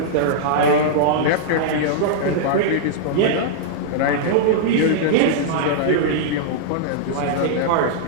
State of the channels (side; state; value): both; different; correlation -0.02